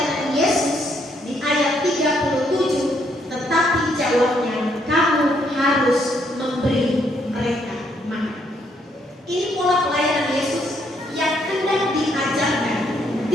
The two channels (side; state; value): both; normal; correlation 0.72